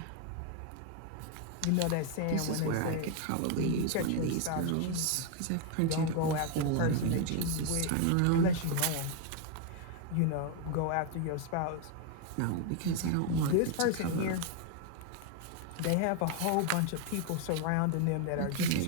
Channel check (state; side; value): different; both; correlation 0.01